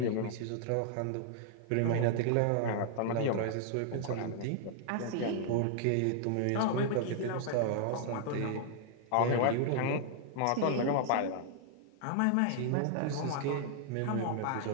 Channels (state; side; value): different; both; correlation -0.01